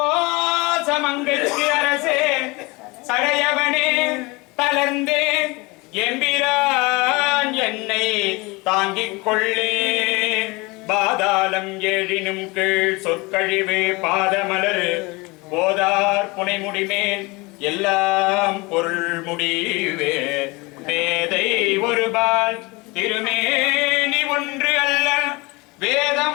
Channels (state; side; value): quieter; right; 24.9 dB